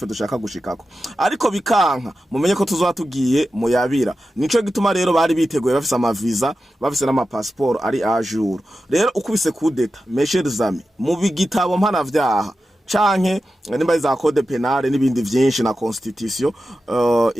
dushaka gushikako, ariko bikanka mumenye ko tuzoba tugiye mu yabira. Nico gituma rero bari biteguye bafise amaviza bafise n'amapassport ari a jour. Rero ukubise kudeta mes amis mu bigitabo mpana vyaha canke nimba za code penale n'ibindi vyinshi na constitution,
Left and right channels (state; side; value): normal; both; correlation 0.92